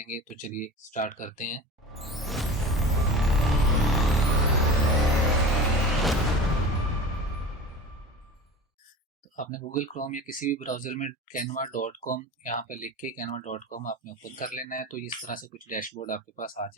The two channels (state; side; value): normal; both; correlation 0.33